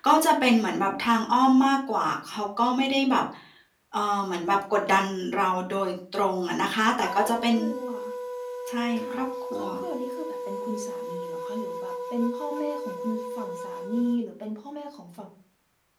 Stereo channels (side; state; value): both; identical; correlation 1.00